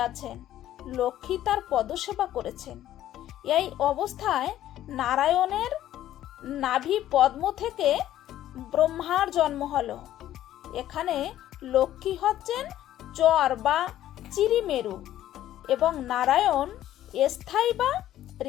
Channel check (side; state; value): right; quieter; 12.7 dB